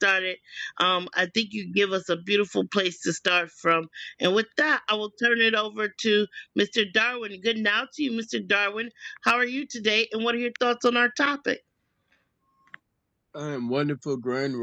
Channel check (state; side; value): identical; both; correlation 1.00